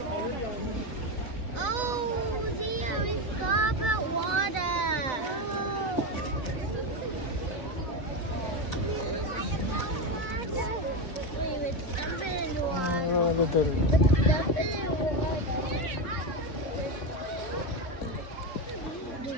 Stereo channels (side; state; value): right; late; 4.0 ms